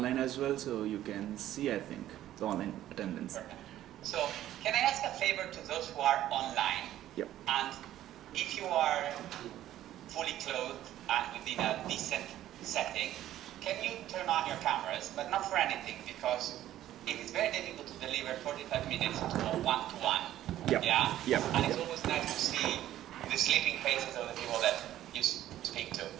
as well. So you can see, I think, the online attendance. Perfect. So can I ask a favor to those who are online? Yep. And if you are fully clothed and within a decent setting, can you turn on your cameras, but not for anything, because it is very difficult to deliver 45 minutes to a one-to-one. Yep. Yeah? Yep. And it's always nice to see the sleeping faces of the people that you speak to.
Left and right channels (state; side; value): quieter; left; 13.0 dB